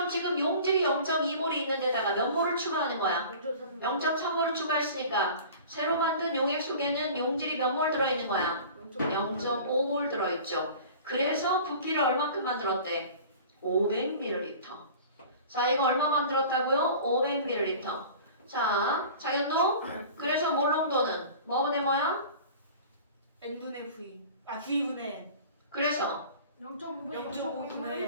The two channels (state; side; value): inverted; both; correlation -0.41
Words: 지금 용질이 0.2몰이 있는 데다가 몇 몰을 추가하는 거야? 0.3. 0.3몰을 추가했으니까 새로 만든 용액 속에는 용질이 몇 몰 들어있는 거야? 0.5몰 들어있죠. 그래서 부피를 얼마큼 만들었대? 500ml. 자 이거 얼마 만들었다고요? 500ml. 자 장현도 그래서 몰 농도는 뭐분의 뭐야? n분의 v. v분의 n. 그래서 0.5분의